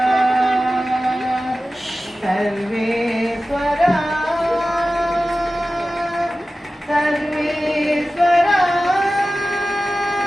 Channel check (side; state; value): both; normal; correlation 0.95